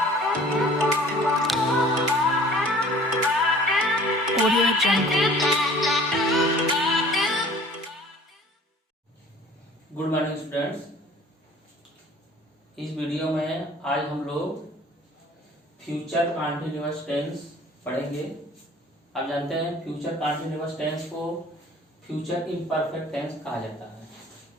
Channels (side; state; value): both; normal; correlation 0.50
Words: Audio Jungle. Good morning students. इस video में आज हम लोग फ्यूचर कॉन्टिन्यूअस टेंस पढ़ेंगे। आप जानते हैं फ्यूचर कॉन्टिन्यूअस टेंस को फ्यूचर इम्परफेक्ट टेंस कहा जाता है।